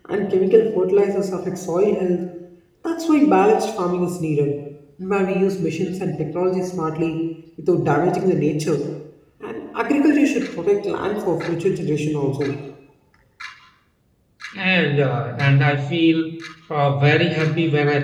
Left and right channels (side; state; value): both; identical; correlation 1.00